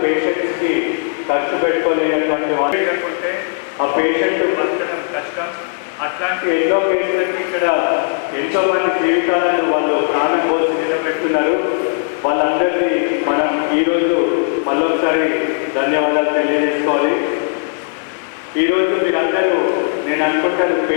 పేషెంట్స్కి ఖర్చు పెట్టుకోలేనటువంటి వాళ్ళు లేకుంటే ఆ పేషెంట్ బతకడం కష్టం. అట్లాంటి ఎన్నో పేషెంట్లకి ఇక్కడ ఎంతోమంది జీవితాలను వాళ్ళు ప్రాణం కోసం నిలబెడుతున్నారు. వాళ్ళందరినీ మనం ఈరోజు మళ్ళొకసారి ధన్యవాదాలు తెలియజేసుకోవాలి. ఈరోజు మీరందరూ నేను అనుకుంటాను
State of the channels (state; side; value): silent; right; digital silence